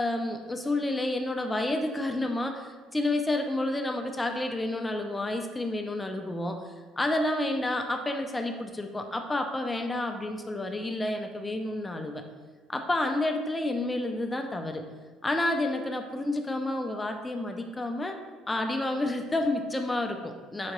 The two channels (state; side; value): normal; both; correlation 0.83